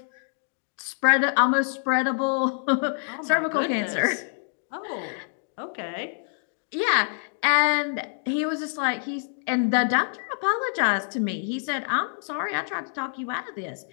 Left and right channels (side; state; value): right; silent; digital silence